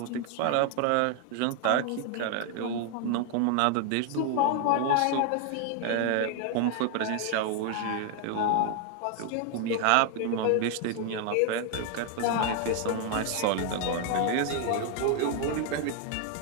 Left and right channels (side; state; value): both; different; correlation 0.00